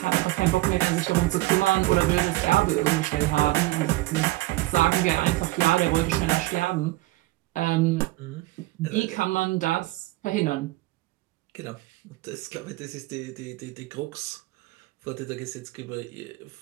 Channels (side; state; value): left; quieter; 18.8 dB